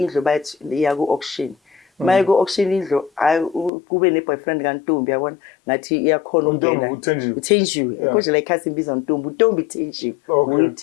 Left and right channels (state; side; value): drops out; right; at 3.7 s